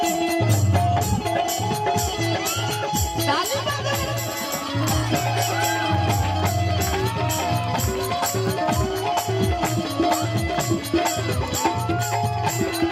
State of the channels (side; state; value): both; identical; correlation 1.00